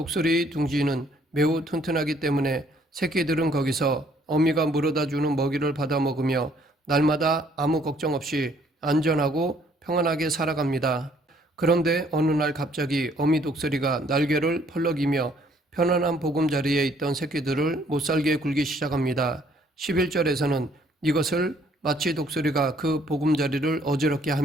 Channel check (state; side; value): normal; both; correlation 0.64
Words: 둥지는 매우 튼튼하기 때문에 새끼들은 거기서 어미가 물어다 주는 먹이를 받아 먹으며 날마다 아무 걱정 없이 안전하고 평안하게 살아갑니다. 그런데 어느 날 갑자기 어미 독수리가 날개를 펄럭이며 편안한 보금자리에 있던 새끼들을 못살게 굴기 시작합니다. 11절에서는 이것을 마치 독수리가 그 보금자리를 어지럽게